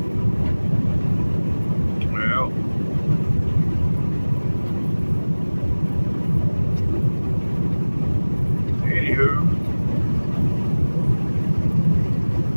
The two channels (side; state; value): both; inverted; correlation -1.00